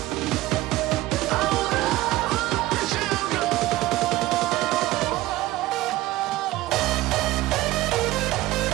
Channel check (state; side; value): quieter; left; 17.2 dB